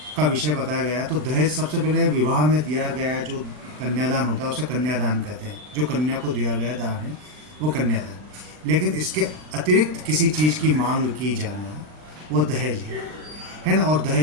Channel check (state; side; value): late; left; 39 ms